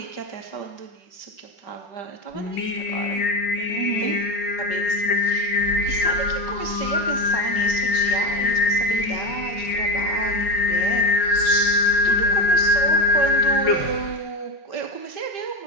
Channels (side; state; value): right; late; 5.4 ms